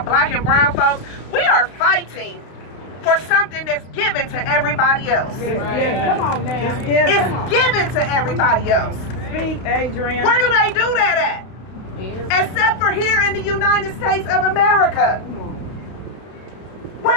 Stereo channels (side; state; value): right; late; 32 ms